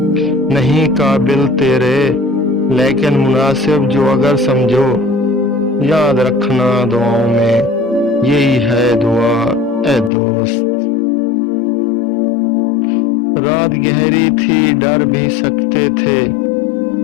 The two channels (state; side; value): drops out; right; at 10.1 s